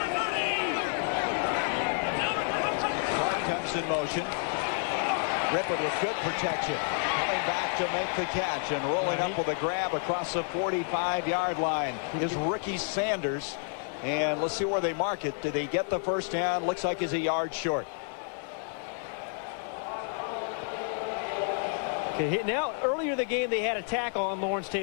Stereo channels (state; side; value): silent; right; 56 dB below the other